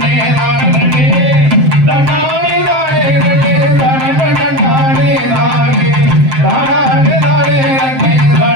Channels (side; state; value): left; late; 7.6 ms